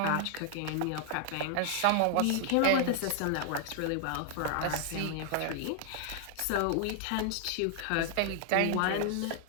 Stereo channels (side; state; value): both; different; correlation 0.00